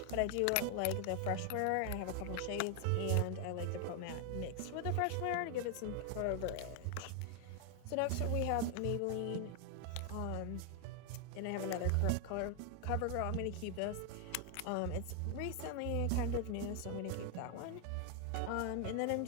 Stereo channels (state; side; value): different; both; correlation 0.00